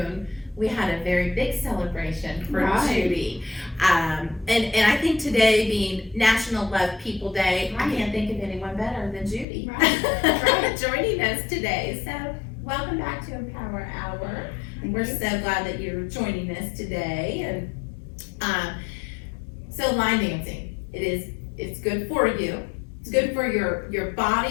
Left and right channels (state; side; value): drops out; right; at 9.5 s